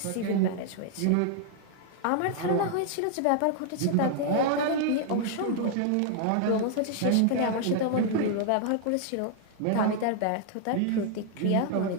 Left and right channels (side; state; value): both; different; correlation 0.00